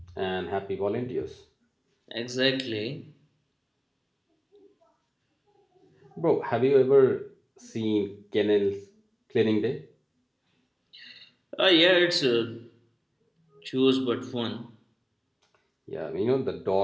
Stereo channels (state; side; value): identical; both; correlation 1.00